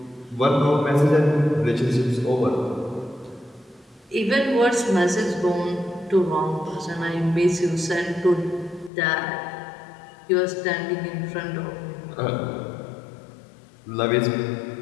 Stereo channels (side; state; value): right; drops out; at 8.9 s